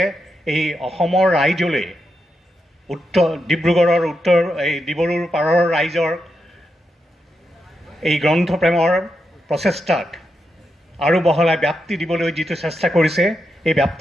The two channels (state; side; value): normal; both; correlation 0.85